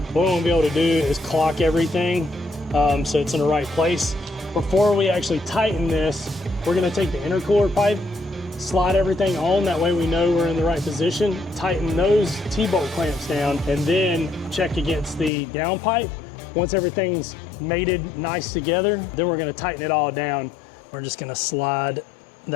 What we want to be able to do is clock everything so it's in the right place. Before we actually tighten this, we're going to take the intercooler pipe, slide everything on, that way we know we're in the right position, tighten those T-bolt clamps down, and then check against the down pipe. Once everything's mated nice together, then we're going to tighten it all down. We're just going to slide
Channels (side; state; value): right; drops out; at 15.3 s